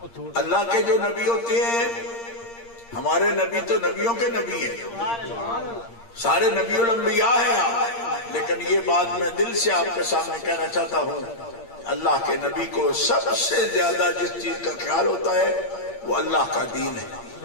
اللہ کے جو نبی ہوتے ہیں، ہمارے نبی تو نبیوں کے نبی ہیں، سارے نبی الانبیاء ہیں آپ، لیکن یہ بات میں دل سے آپ کے سامنے کہنا چاہتا ہوں، اللہ کے نبی کو سب سے زیادہ جس چیز کا خیال ہوتا ہے وہ اللہ کا دین ہے۔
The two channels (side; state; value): right; late; 8.6 ms